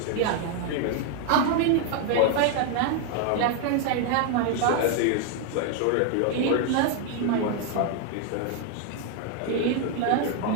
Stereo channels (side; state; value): both; different; correlation 0.00